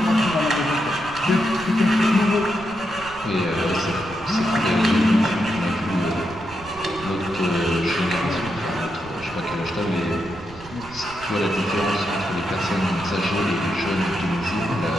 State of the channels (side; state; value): right; noise; rumble, 19 dB below the sound